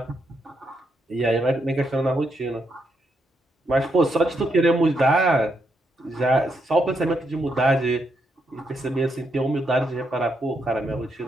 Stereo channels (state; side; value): normal; both; correlation 0.79